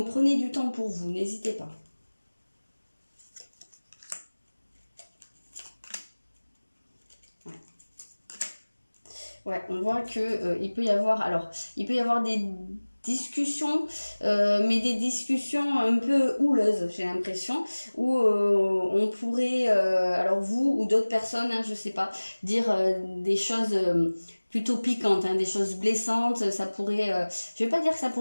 prenez du temps pour vous, n'hésitez pas. Ouais, on voit que il peut y avoir des discussions, mais des discussions un peu houleuses, j'ai l'impression, où on pourrait, alors vous ou d'autres personnes, hein, je sais pas, dire des choses plutôt piquantes, hein, des choses blessantes. Ça pourrait, je vais pas dire que ça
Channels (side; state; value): both; inverted; correlation -1.00